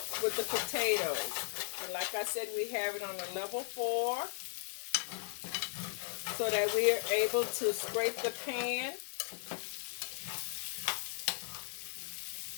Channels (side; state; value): right; silent; 53 dB below the other